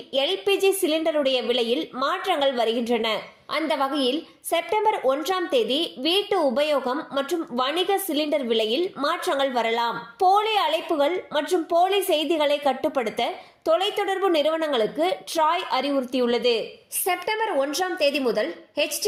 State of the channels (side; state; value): both; identical; correlation 1.00